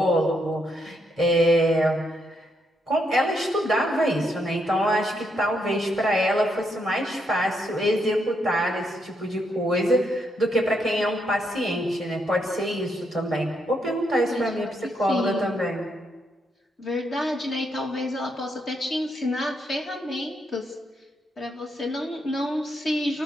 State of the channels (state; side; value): normal; both; correlation 0.78